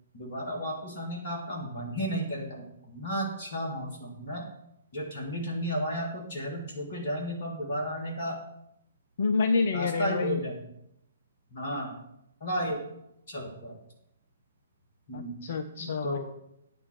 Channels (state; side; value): inverted; both; correlation -0.61